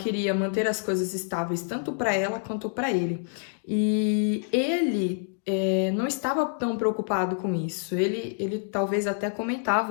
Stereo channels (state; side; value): silent; right; digital silence